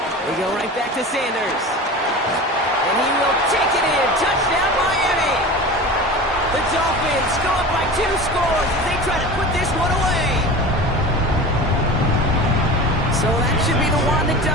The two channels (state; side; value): normal; both; correlation 0.33